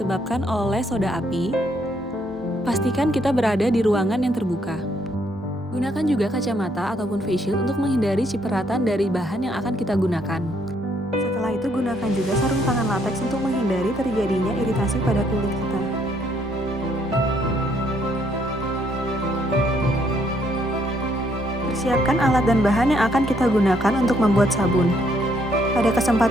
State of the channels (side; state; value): both; normal; correlation 0.70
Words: oleh soda api. Pastikan kita berada di ruangan yang terbuka. Gunakan juga kacamata ataupun face shield untuk menghindari cipratan dari bahan yang akan kita gunakan. Setelah itu, gunakan juga sarung tangan latex untuk menghindari terjadinya iritasi pada kulit kita. Persiapkan alat dan bahan yang akan kita gunakan untuk membuat sabun. Pada